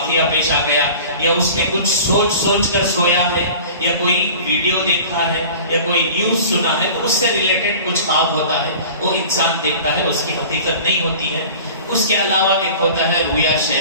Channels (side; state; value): both; inverted; correlation -0.41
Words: پیش آ گیا یا اس نے کچھ سوچ کر سویا ہے یا کوئی ویڈیو دیکھا ہے یا کوئی نیوز سنا ہے تو اس سے ریلیٹڈ کچھ خواب ہوتا ہے، وہ انسان دیکھتا ہے، اس کی حقیقت نہیں ہوتی ہے۔ اس کے علاوہ ایک ہوتا ہے رؤیا